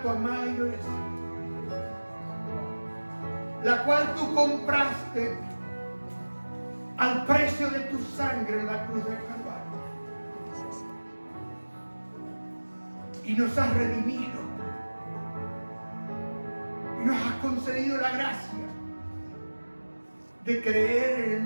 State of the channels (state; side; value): inverted; both; correlation -1.00